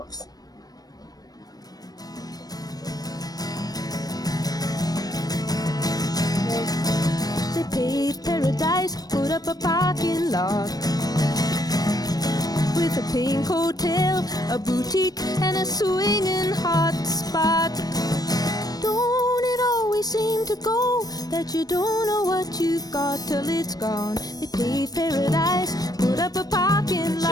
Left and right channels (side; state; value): right; late; 0.19 ms